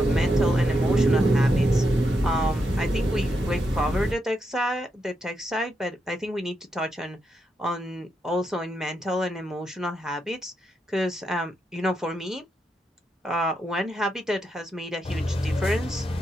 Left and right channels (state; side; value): normal; both; correlation 0.83